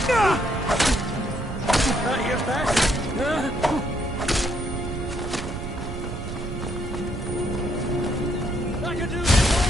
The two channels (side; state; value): right; noise; rumble, 7 dB below the sound